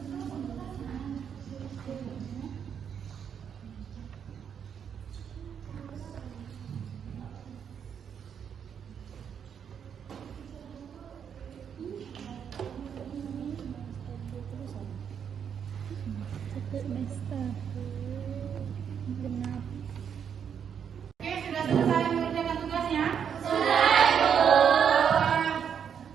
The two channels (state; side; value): quieter; left; 7.8 dB